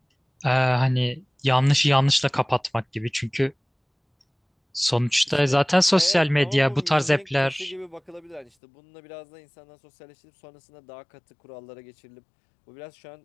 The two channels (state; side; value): drops out; right; at 8.5 s